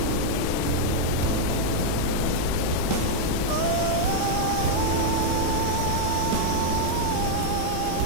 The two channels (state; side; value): different; both; correlation -0.01